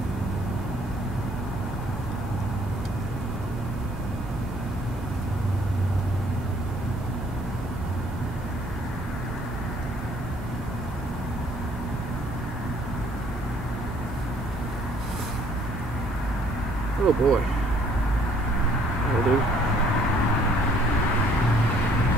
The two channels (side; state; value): both; normal; correlation 0.60